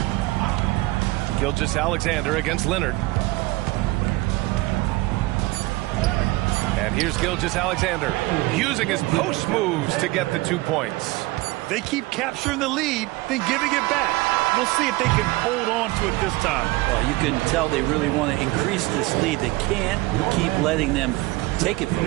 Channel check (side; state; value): left; quieter; 20.8 dB